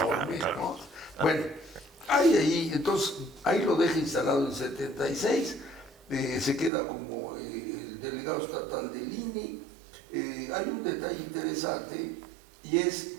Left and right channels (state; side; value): drops out; left; at 6.7 s